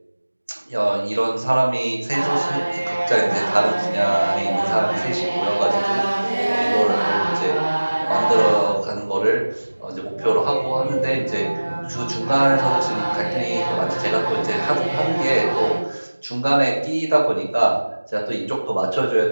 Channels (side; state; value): both; inverted; correlation -1.00